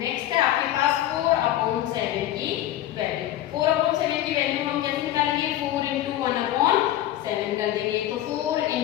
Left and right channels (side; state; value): right; quieter; 13.0 dB